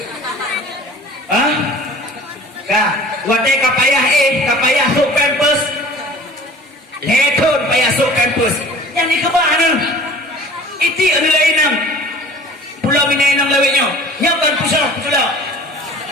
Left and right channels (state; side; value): normal; both; correlation 0.46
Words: Hah? Kak, wadah kapayah kapayah sok pampers. Lekon payah sok pampers. Yang ni kebah ni. Iti anu lain nang. Pulau Minai nang lawetnya. Nyakan pusat pula.